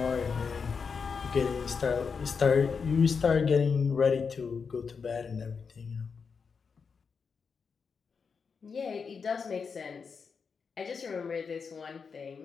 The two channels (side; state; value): right; quieter; 5.6 dB